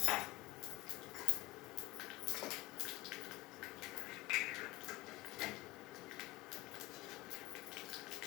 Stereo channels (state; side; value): quieter; right; 19.5 dB